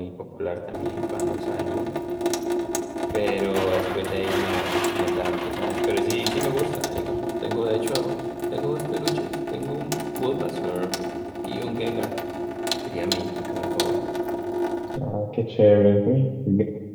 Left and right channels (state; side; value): identical; both; correlation 1.00